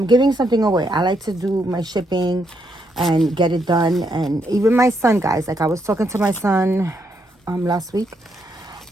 giving something away, I like to do my shipping and get it done. And even my son, guys, like I was talking to my son last week,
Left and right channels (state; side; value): normal; both; correlation 0.77